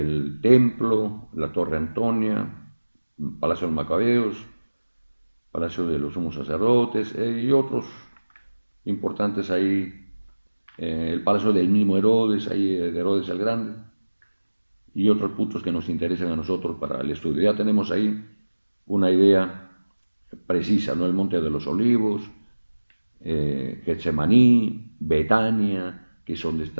templo, la Torre Antonia, Palacio de los Macabeos, Palacio de los Sumos Sacerdotes y otros importantes ahí. El palacio del mismo Herodes, ahí de Herodes el Grande, y otros puntos que nos interesan a nosotros para el estudio. Ya tenemos ahí una idea precisa, ¿no? El Monte de los Olivos, Getsemaní, Betania, que es donde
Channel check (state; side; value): inverted; both; correlation -1.00